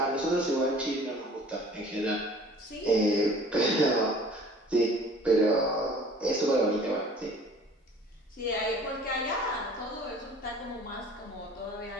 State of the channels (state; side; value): normal; both; correlation 0.48